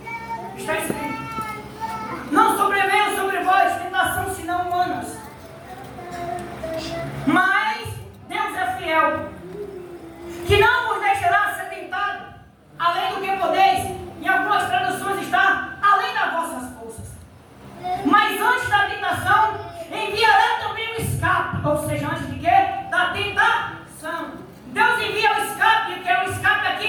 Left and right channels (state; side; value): identical; both; correlation 1.00